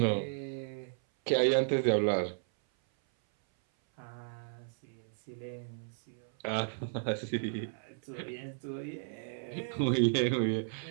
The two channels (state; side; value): silent; left; 55 dB below the other